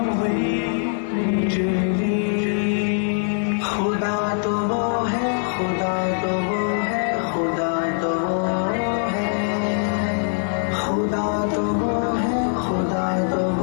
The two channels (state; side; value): silent; right; digital silence